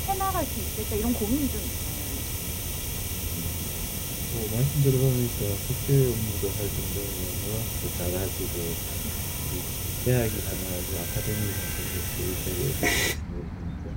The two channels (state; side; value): identical; both; correlation 1.00